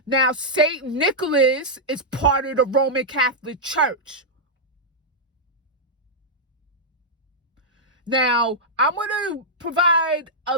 Now, St. Nicholas is part of the Roman Catholic Church. Now, I'm going to provide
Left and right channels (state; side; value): normal; both; correlation -0.08